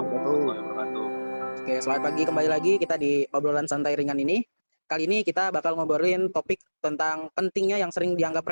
wabarakatuh. wabarakatuh. Oke, selamat pagi kembali lagi kita di obrolan santai ringan ini. Kali ini kita bakal ngobrolin topik tentang pentingnya yang sering dianggap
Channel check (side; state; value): both; inverted; correlation -1.00